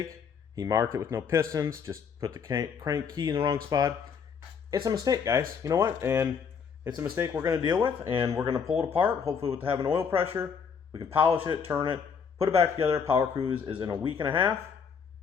He marked it with no pistons, just put the crank key in the wrong spot. It's a mistake, guys. You know what? And it's a mistake we're going to deal with, and we're going to pull it apart, hopefully with having oil pressure. We can polish it, turn it, put it back together. Power cruise is in a week and a half,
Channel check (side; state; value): right; quieter; 6.5 dB